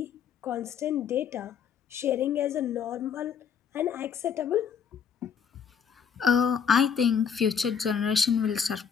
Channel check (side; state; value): right; quieter; 7.2 dB